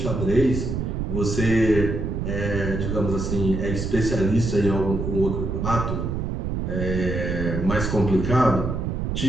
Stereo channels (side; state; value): right; noise; rumble, 2 dB below the sound